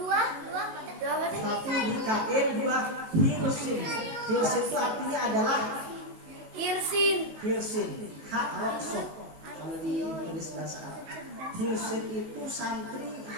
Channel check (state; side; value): late; left; 18 ms